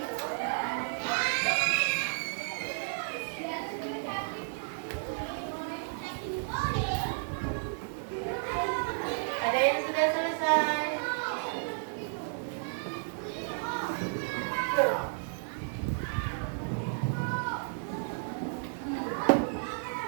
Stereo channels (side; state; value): left; silent; digital silence